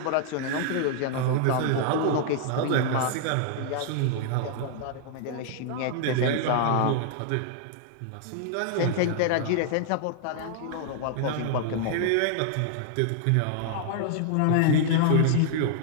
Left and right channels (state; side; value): different; both; correlation -0.01